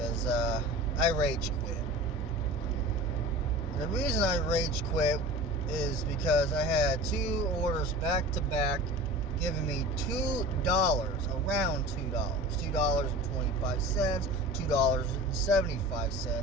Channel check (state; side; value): normal; both; correlation 0.36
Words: I rage quit. And the reason I rage quit is because I had two orders back to back giving me $2, around $2, $2.25,